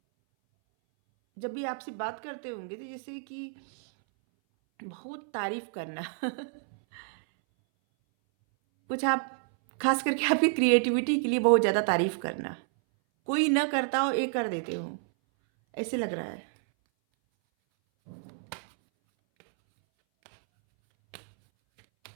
जब भी आपसे बात करते होंगे तो जैसे कि बहुत तारीफ करना कुछ आप, खास करके आपकी क्रिएटिविटी के लिए बहुत ज़्यादा तारीफ करना, कोई ना करता हो ये कर देते हो, ऐसे लग रहा है।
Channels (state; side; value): silent; left; 58 dB below the other